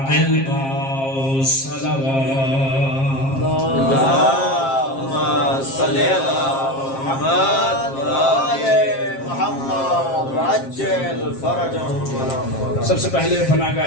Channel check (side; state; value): right; late; 7.5 ms